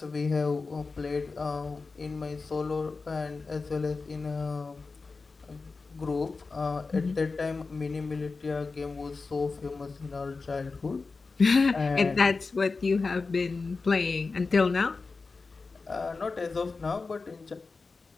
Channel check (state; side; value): quieter; right; 4.2 dB